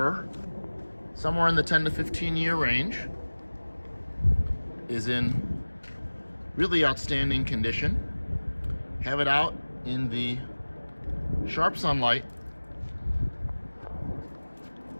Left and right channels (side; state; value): both; inverted; correlation -1.00